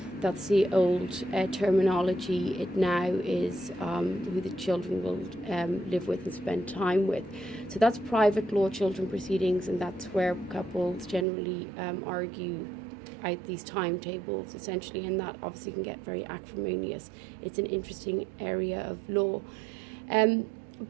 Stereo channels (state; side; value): drops out; left; at 11.2 s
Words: That's the old terminology. It now is who the children will live with and spend time with. So that's private law children proceedings, and that's where couples generally argue out these timetables, essentially, and that obviously can get very acrimonious. It's an interesting area of law.